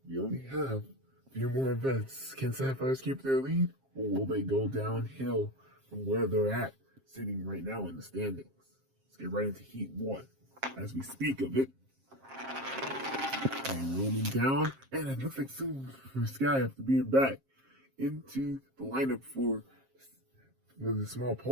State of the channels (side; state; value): left; late; 7.5 ms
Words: We only have a few more events. Can Sapphires keep their lead, or will they go downhill from where they're at, sitting right now in the standings? Let's get right into Heat 1 as we speak of it. And rolling down, and it looks like soon for Sky after being back into the lineup for the Small